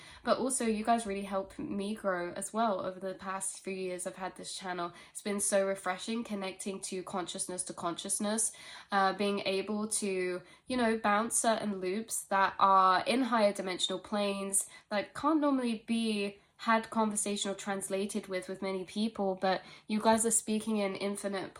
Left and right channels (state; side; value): identical; both; correlation 1.00